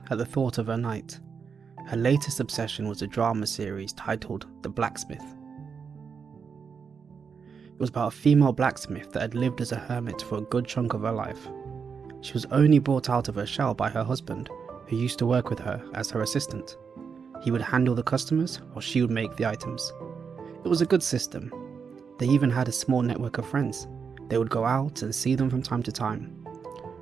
at the thought of her night. Her latest obsession was a drama series titled The Blacksmith. It was about a female blacksmith that had lived as a hermit for a good chunk of her life. She was only brought out of her shell by her husband, who used to work with her as her assistant. He would handle the customers while she would make the items. It was a good system. They even had a small network of friends. They would go out and see them from time to time.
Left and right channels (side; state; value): left; quieter; 6.0 dB